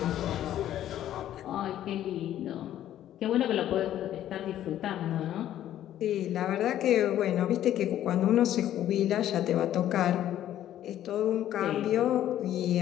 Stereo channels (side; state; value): right; quieter; 12.0 dB